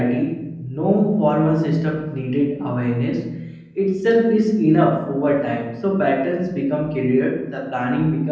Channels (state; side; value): identical; both; correlation 1.00